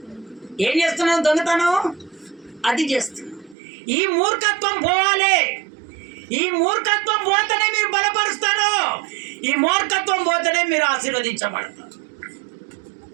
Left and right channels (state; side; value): drops out; left; at 3.6 s